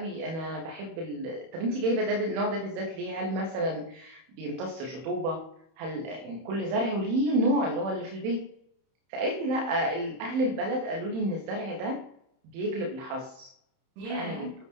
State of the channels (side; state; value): left; late; 31 ms